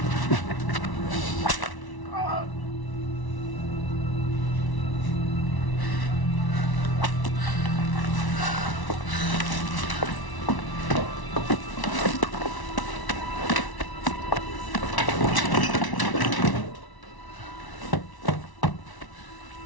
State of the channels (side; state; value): right; late; 1.1 ms